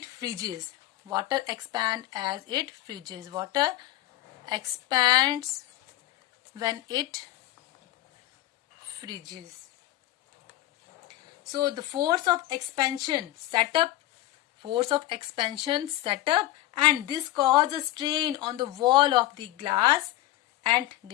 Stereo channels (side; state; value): right; quieter; 15.6 dB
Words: freezes. Water expand as it freezes. Water expands when it freezes. So the force of expansion set up, and this causes strain on the wall of the glass and